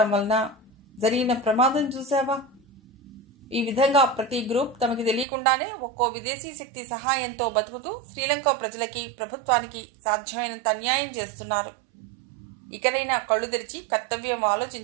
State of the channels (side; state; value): left; drops out; at 5.2 s